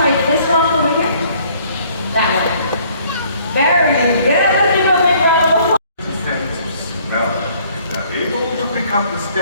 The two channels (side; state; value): both; inverted; correlation -0.60